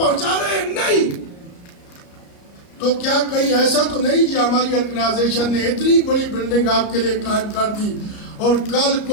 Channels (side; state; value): right; late; 34 ms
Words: رہے ہیں؟ نہیں. تو کیا کہیں ایسا تو نہیں کہ ہماری آرگنائزیشن نے اتنی بڑی بلڈنگ آپ کے لیے قائم کر دی اور کل